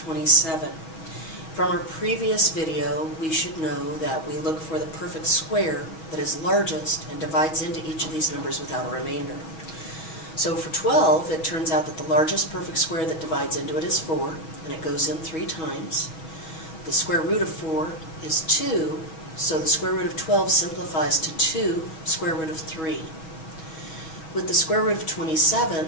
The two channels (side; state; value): right; late; 6.2 ms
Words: From our previous video, we should know that we look for the perfect square that is largest and divides into each of these numbers without a remainder. So for 12, it turns out that the largest perfect square that divides into it is 4, and it goes in 3 times. The square root of 4 is 2, so the square root of 12 simplifies to 2 square root of 3. With the square root of 27,